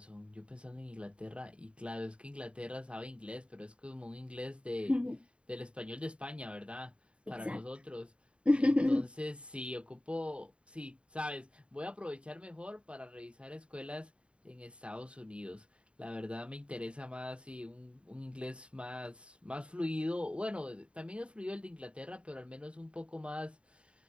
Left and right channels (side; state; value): left; late; 0.059 ms